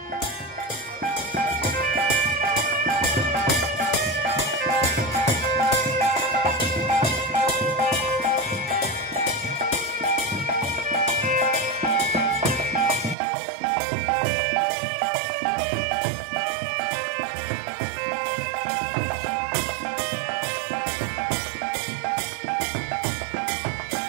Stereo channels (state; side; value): drops out; left; at 13.2 s